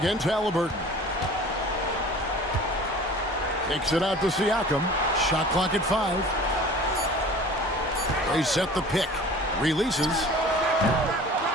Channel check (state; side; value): normal; both; correlation 0.43